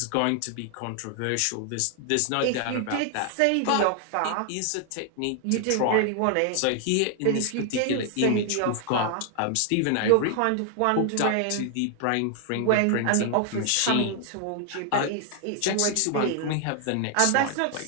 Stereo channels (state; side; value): different; both; correlation 0.00